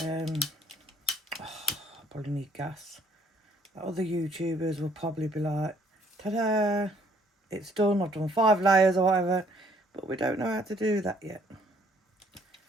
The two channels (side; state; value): both; normal; correlation 0.63